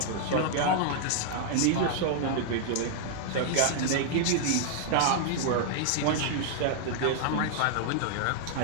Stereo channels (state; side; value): different; both; correlation -0.01